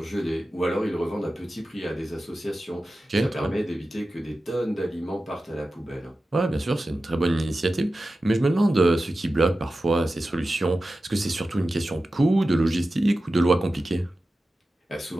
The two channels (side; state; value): both; normal; correlation 0.94